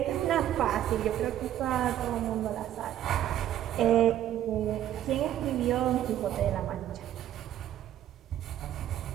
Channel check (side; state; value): left; quieter; 11.8 dB